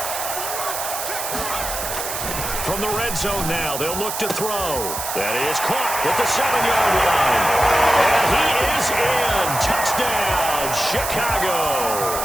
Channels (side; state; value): right; noise; hiss, 5 dB below the sound